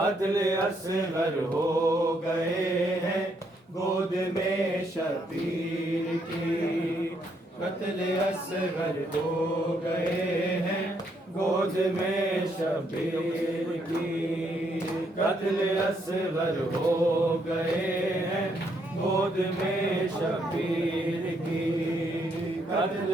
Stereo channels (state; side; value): normal; both; correlation 0.73